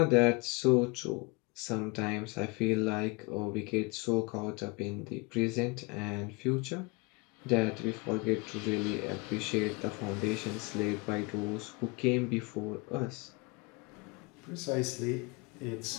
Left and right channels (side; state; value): right; quieter; 28.0 dB